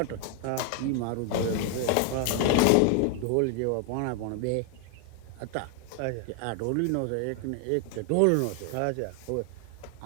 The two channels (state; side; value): different; both; correlation 0.01